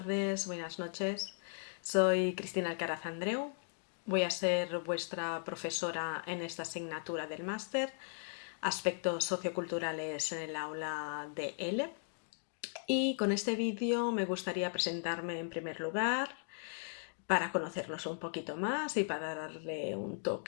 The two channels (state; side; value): silent; right; digital silence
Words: buenas noches. Soy Cristina Alcaraz Andreu. Voy a ser vuestra profesora en esta asignatura del máster, Aspectos socioculturales en el aula de L. Y con este vídeo me gustaría presentarme en primer lugar para conocernos un poquito más y para darle un